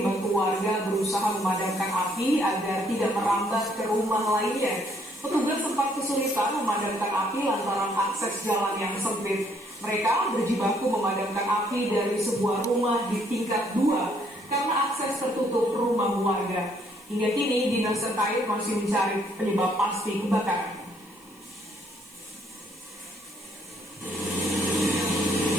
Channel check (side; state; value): right; noise; hiss, 27 dB below the sound